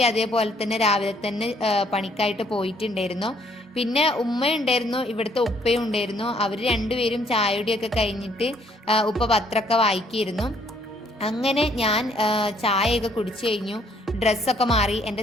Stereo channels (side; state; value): both; normal; correlation 0.65